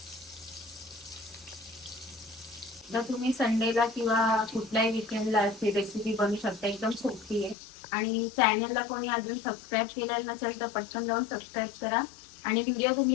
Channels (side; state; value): right; drops out; at 7.6 s